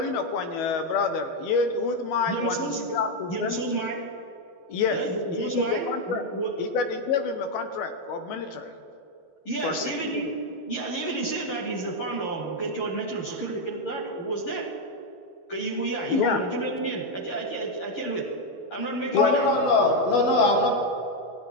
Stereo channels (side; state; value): right; late; 12 ms